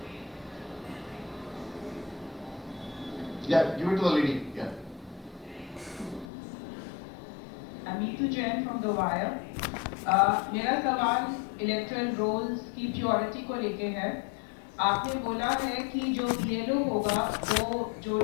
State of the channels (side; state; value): right; drops out; at 6.2 s